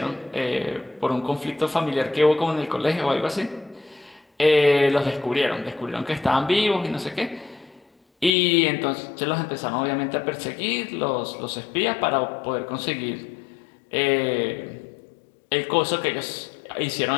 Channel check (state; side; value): drops out; right; at 8.3 s